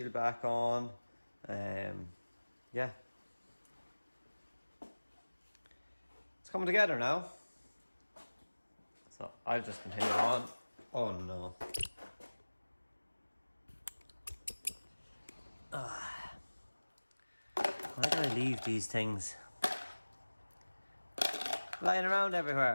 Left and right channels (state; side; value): inverted; both; correlation -1.00